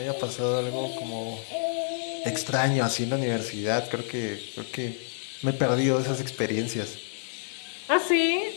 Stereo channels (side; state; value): right; silent; digital silence